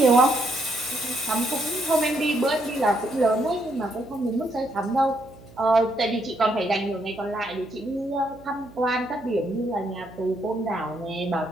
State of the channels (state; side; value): noise; right; hum, 21 dB below the sound